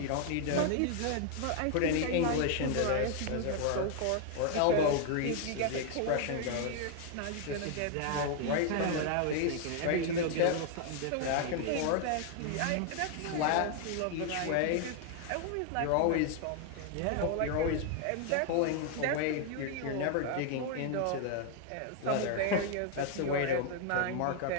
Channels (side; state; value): both; different; correlation 0.00